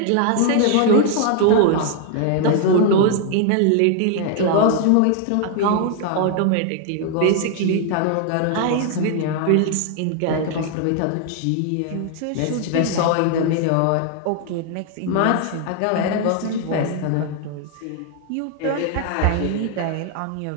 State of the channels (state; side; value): different; both; correlation 0.00